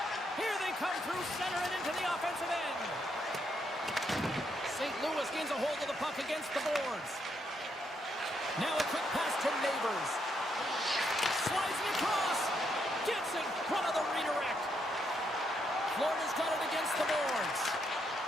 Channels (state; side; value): normal; both; correlation 0.77